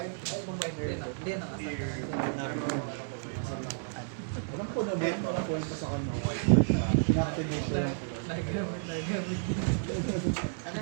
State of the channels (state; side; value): silent; left; 57 dB below the other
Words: na nga. Alam ko naman, walang kwento sa kanya. Inactivate siya. Nagamit. Ano